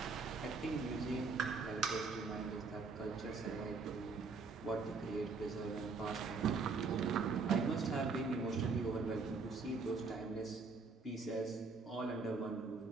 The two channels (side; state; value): left; quieter; 4.4 dB